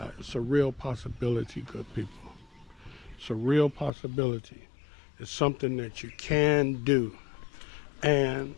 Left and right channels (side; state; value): right; drops out; at 3.9 s